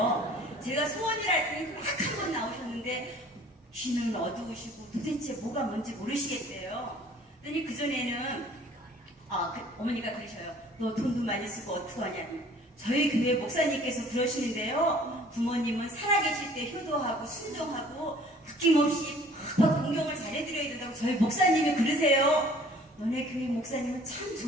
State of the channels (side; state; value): both; normal; correlation 0.53